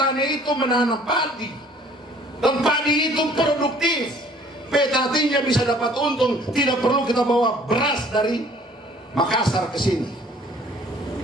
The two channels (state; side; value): normal; both; correlation 0.55